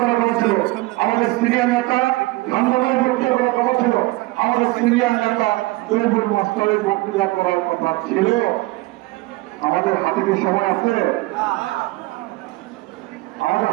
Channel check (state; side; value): quieter; left; 20.7 dB